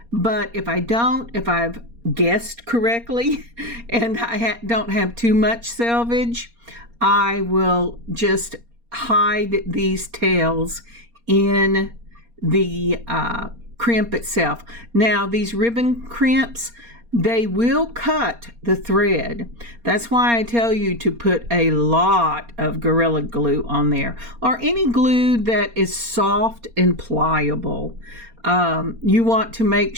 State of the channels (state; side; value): late; left; 4.3 ms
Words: But if I don't, if I've guessed correctly and I don't have too much selvage, I will just hide these tails in the crimp itself. Now, these ribbon crimps, they will cut the thread. That's why I tell you to put a lot of Gorilla Glue on there, or any glue that is soft and pliable. You want to make